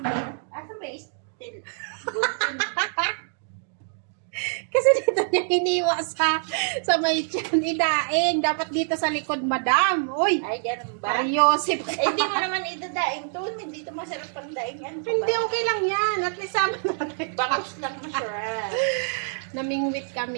asan ba still? Kasi dito niya hiniwa sa may tiyan, idaing. Dapat dito sa likod, madam. Uy! Ay, ganun ba? Mariosip ka. Eh, hindi mo naman idadaing to. Hindi to masarap pang daingan. Hindi, okay lang yan. At least sama natin. Bangus lang masarap. Namingwit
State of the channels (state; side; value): silent; left; digital silence